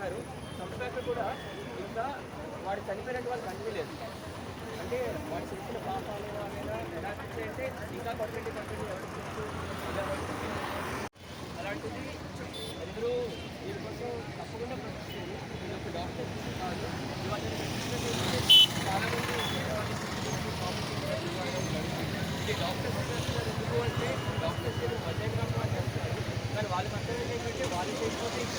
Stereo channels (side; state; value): both; identical; correlation 1.00